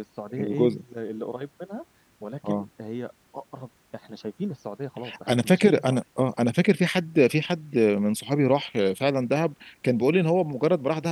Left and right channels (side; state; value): both; identical; correlation 1.00